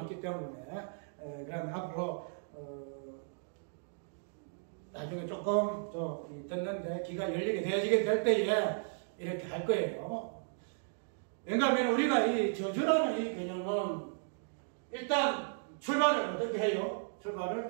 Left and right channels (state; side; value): silent; left; digital silence